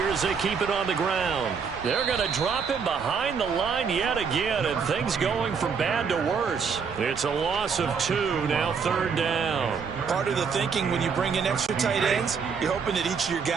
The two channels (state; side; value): quieter; left; 6.0 dB